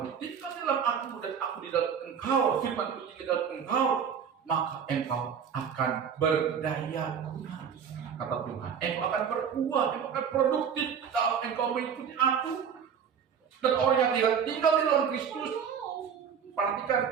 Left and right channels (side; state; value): left; quieter; 7.4 dB